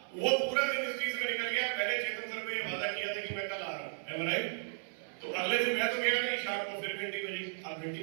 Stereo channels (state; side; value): silent; left; 55 dB below the other